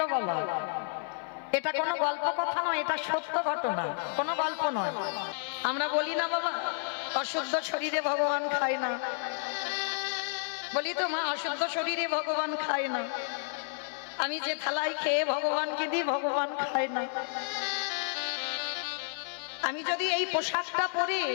বাবা। এটা কোনো গল্প কথা নয়, এটা সত্য ঘটনা, কোনো গল্প নয়। আমরা বলি না বাবা অশুদ্ধ শরীরে ভগবান খায় না, বলি তো মা অশুদ্ধ শরীরে ভগবান খায় না। আমি যে থালায় খেয়ে ভগবানকে দিই ভগবান খায় না। আমি যদি এই পোশাকটা পরে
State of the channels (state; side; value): silent; right; 57 dB below the other